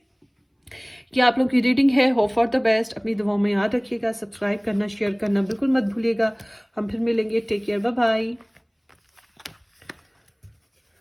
कि आप लोग की रीडिंग है, होप फॉर द बेस्ट। अपनी दुआओं में याद रखिएगा, सब्सक्राइब करना, शेयर करना बिल्कुल मत भूलिएगा। हम फिर मिलेंगे, take care, bye bye.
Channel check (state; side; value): identical; both; correlation 1.00